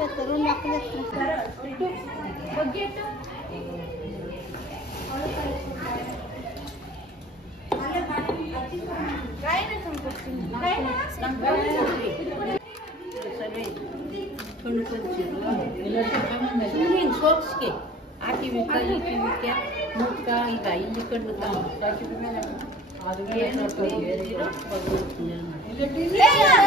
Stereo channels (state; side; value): normal; both; correlation 0.47